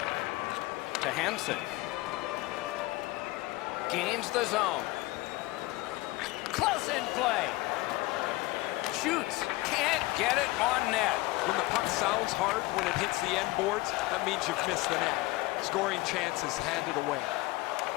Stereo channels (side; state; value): right; quieter; 20.6 dB